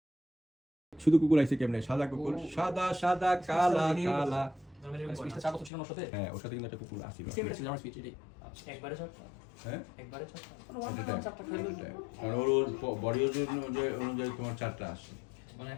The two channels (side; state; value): right; drops out; at 5.7 s